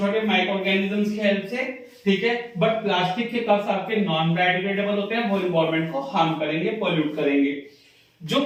माइक्रो ऑर्गेनिजम्स की हेल्प से, ठीक है। बट प्लास्टिक के कप्स आपके नॉन बायोडिग्रेडेबल होते हैं, वो एनवायरमेंट को हार्म करेंगे, पोल्यूट करेंगे। जो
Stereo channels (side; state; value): both; identical; correlation 1.00